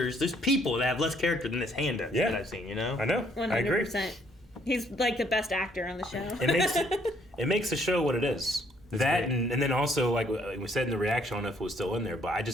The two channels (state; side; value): normal; both; correlation 0.66